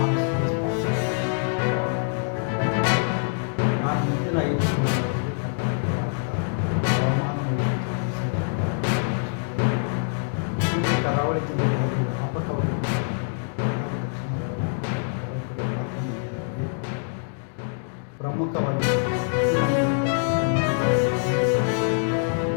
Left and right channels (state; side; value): silent; right; 62 dB below the other